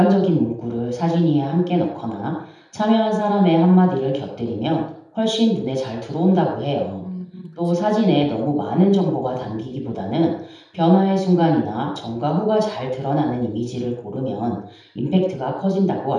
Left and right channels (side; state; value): both; identical; correlation 1.00